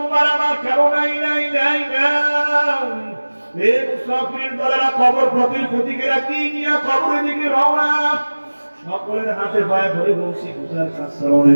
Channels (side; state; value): both; inverted; correlation -1.00